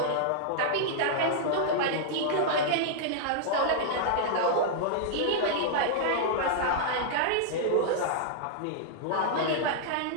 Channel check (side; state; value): both; different; correlation -0.01